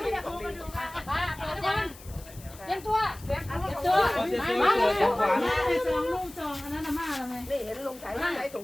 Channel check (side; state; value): left; noise; hiss, 20 dB below the sound